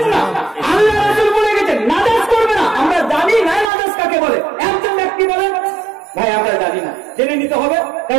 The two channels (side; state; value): left; drops out; at 3.7 s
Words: না। আল্লাহ রাসূল বলে গেছেন নাজাস করবে না। আমরা জানি না নাজাস কাকে বলে। একজন ব্যক্তি বলে ভাই আমরা জানি না, জেনে নিতে হবে,